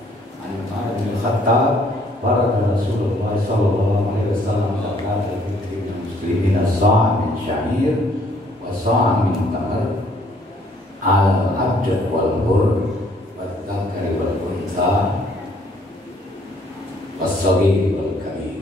an Umar bin Khattab baraka Rasulullah sallallahu alaihi wasallam zakat al-fitri lil muslimin as-sa' min sya'ir wa sa' min tamar al-abd wal bur wa dzakari wal untha was-saghir wal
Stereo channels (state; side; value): normal; both; correlation 0.63